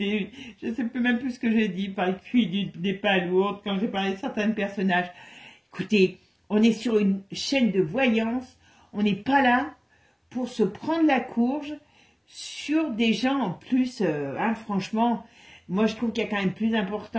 Je ne sais même plus ce que j'ai dit, par le QI des palourdes, quand j'ai parlé de certains personnages. Écoutez, on est sur une chaîne de voyance, on n'est pas là pour se prendre la courge sur des gens en plus, franchement, moi je trouve qu'il y a quand même plus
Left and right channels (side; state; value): both; identical; correlation 1.00